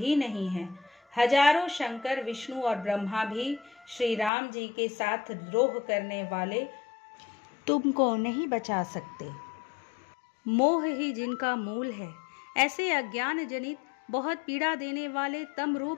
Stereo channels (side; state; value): right; drops out; at 4.3 s